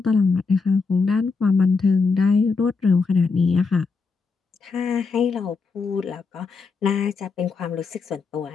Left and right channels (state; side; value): quieter; right; 4.6 dB